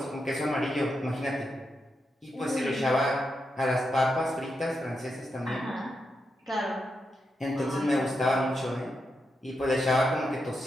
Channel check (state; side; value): normal; both; correlation 0.85